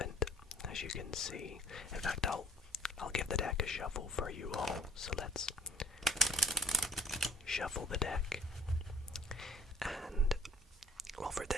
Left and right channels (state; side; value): normal; both; correlation 0.56